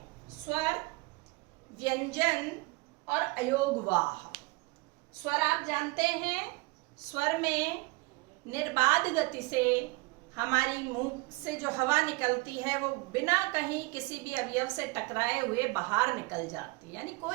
स्वर, व्यंजन और अयोगवाह। स्वर आप जानते हैं, स्वर में निर्बाध गति से हमारी मुंह से जो हवा निकलती है वो बिना कहीं किसी भी अवयव से टकराए हुए बाहर निकल जाती है, यानी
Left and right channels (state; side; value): quieter; left; 25.0 dB